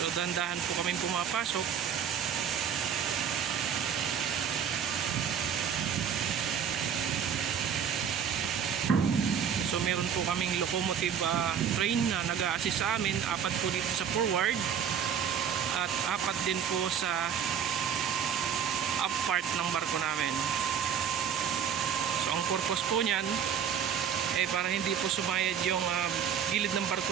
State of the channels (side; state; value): left; quieter; 8.0 dB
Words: So dandahan po kaming pumapasok. So meron po kaming locomotive train na nag-a-assist sa amin. 4 po dito sa forward at 4 din po sa up part ng barko namin. So ang purpose po niyan, para hindi po sumayad yung gilid ng